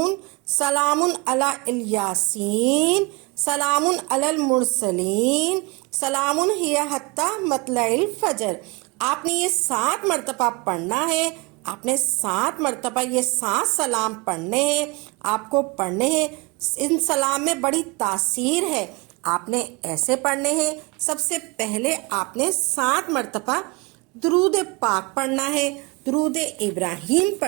سلام علی الیاسین، سلام علی المرسلین، سلام ہی حتی مطلع الفجر۔ آپ نے یہ 7 مرتبہ پڑھنا ہے، آپ نے 7 مرتبہ یہ 7 سلام پڑھنے ہیں، آپ کو پڑھنے ہیں۔ ان سلام میں بڑی تاثیر ہے، آپ نے ایسے پڑھنے ہیں۔ سب سے پہلے آپ نے 7 مرتبہ درود پاک پڑھنا ہے، درود ابراہیم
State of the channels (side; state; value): left; quieter; 27.6 dB